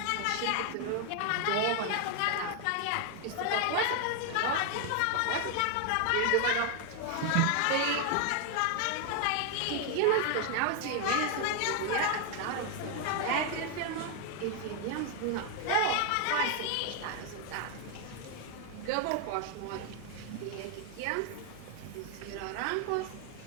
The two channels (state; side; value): different; both; correlation 0.00